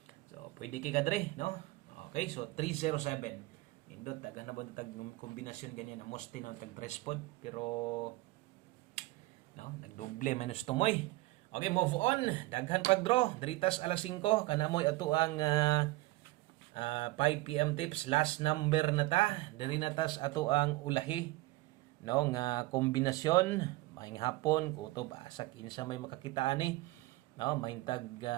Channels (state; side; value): quieter; left; 20.1 dB